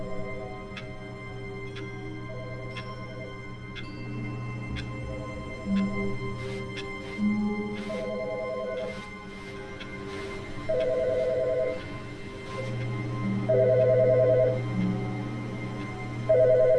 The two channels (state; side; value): identical; both; correlation 1.00